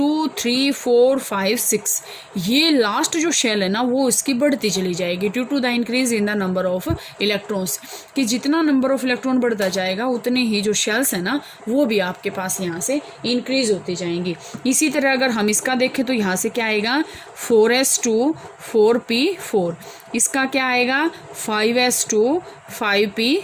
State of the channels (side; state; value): both; identical; correlation 1.00